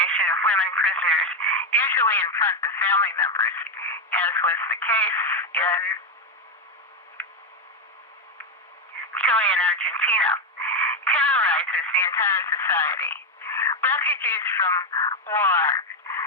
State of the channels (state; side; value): normal; both; correlation 0.08